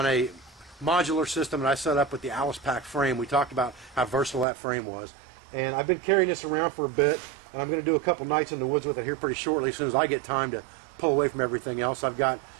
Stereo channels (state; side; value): drops out; left; at 4.5 s